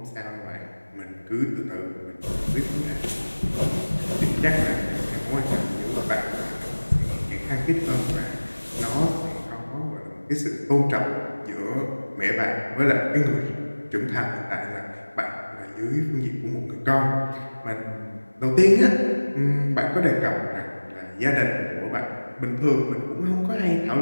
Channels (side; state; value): both; inverted; correlation -1.00